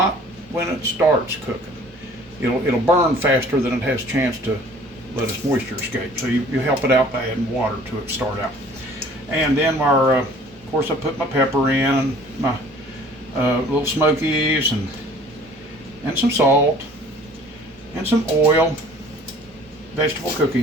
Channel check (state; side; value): normal; both; correlation 0.51